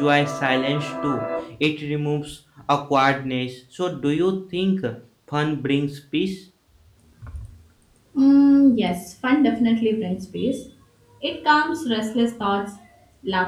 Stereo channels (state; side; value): identical; both; correlation 1.00